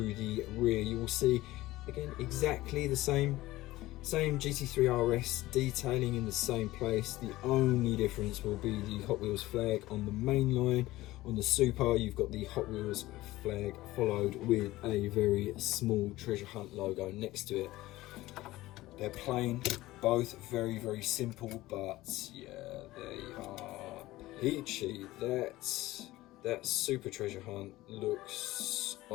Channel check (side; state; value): right; quieter; 17.6 dB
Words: the rear you will see, again, exactly the same GT3 RS detailing in the same place. The only difference will be the Hot Wheels flag on the main line. On the Super you've got the Hot Wheels flag followed with a very small Treasure Hunt logo next to it. They're plain, both very simple, but yeah, they are peachy. That Super Treasure Hunt looks,